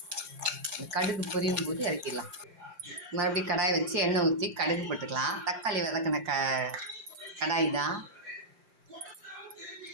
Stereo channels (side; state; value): left; late; 5.7 ms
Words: கடுகு பொரியும் போது இறக்கிடலாம். மறுபடியும் கடாயை வச்சு எண்ணெய் ஊற்றி கடுகு போட்டுக்கலாம். தக்காளி வதக்கின கடாய் தான்.